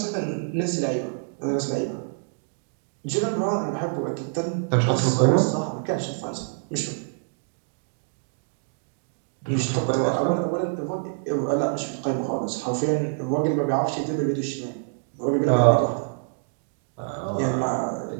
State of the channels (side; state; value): left; silent; digital silence